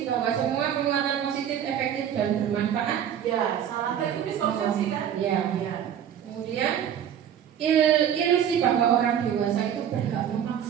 bahwa semua penguatan positif efektif dan bermanfaat. Ya, salah itu miskonsepsi Ya. Kemudian ilusi bahwa orang dewasa itu berhak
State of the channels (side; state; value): left; quieter; 9.4 dB